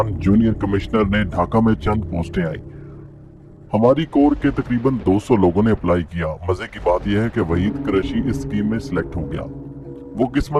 जूनियर कमिश्नर ने ढाका में चंद पोस्टें आई। हमारी कोर के तकरीबन 200 लोगों ने अप्लाई किया। मजे की बात यह है कि वहीद कुरैशी इस स्कीम में सिलेक्ट हो गया। वो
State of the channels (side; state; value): both; identical; correlation 1.00